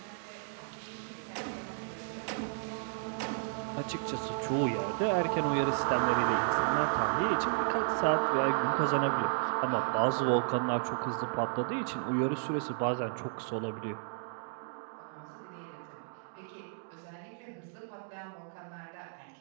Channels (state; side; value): silent; left; digital silence